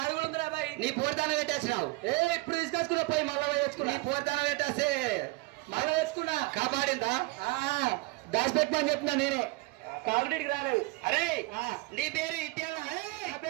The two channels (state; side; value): quieter; left; 22.6 dB